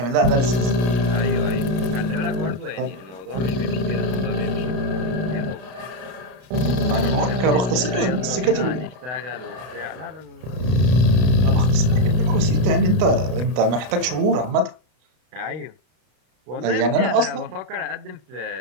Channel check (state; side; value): late; left; 32 ms